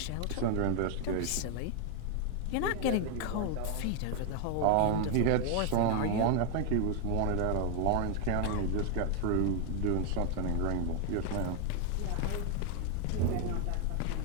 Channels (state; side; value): different; both; correlation 0.01